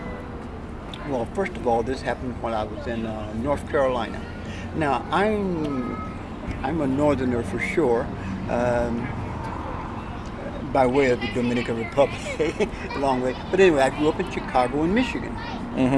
Well, first of all, this happened when I was in North Carolina. Now, I'm a northerner for sure, by way of the Dominican Republic, a long way. But anyway, I grew up in Chicago and Michigan.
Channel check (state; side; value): identical; both; correlation 1.00